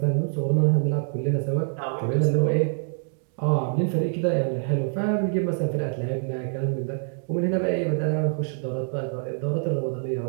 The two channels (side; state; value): left; silent; digital silence